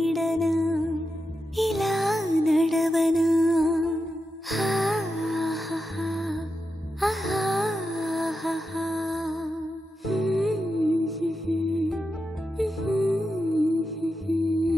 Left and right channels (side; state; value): both; normal; correlation 0.88